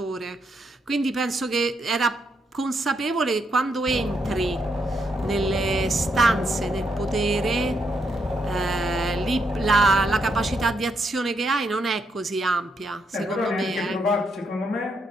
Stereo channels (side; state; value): both; normal; correlation 0.78